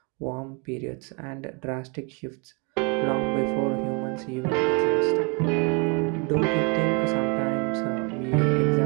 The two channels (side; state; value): left; quieter; 33.3 dB